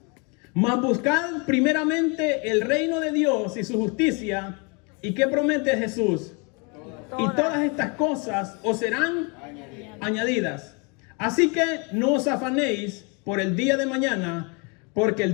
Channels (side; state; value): right; quieter; 32.3 dB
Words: Mas buscad primeramente el reino de Dios y su justicia. ¿Y qué promete Jesús? Y todas estas cosas os serán añadidas. Así que no os afanéis por el día de mañana, porque